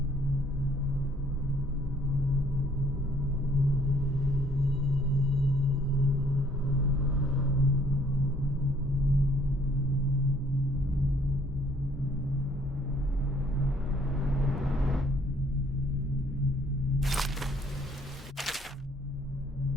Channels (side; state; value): both; normal; correlation 0.62